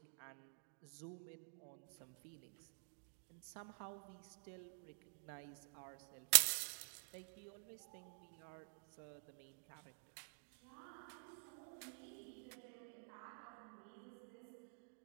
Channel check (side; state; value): left; silent; digital silence